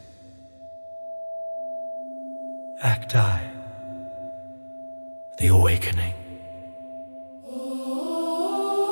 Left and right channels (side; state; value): both; inverted; correlation -1.00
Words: Act I, the awakening.